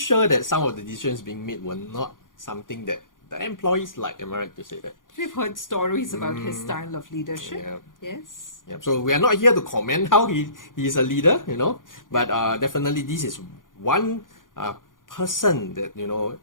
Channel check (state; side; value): late; right; 0.89 ms